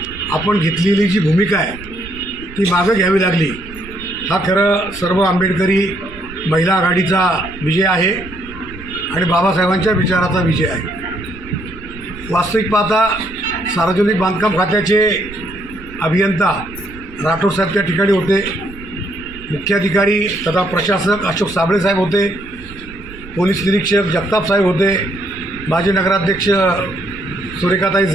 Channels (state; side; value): noise; right; rumble, 17 dB below the sound